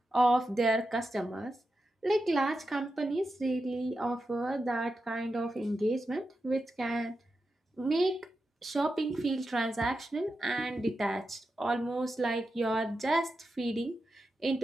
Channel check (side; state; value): both; normal; correlation 0.89